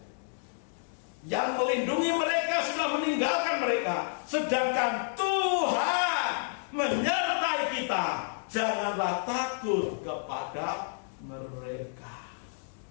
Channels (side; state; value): right; silent; 58 dB below the other